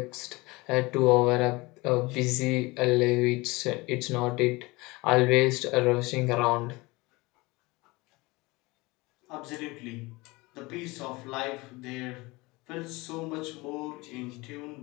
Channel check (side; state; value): right; quieter; 23.2 dB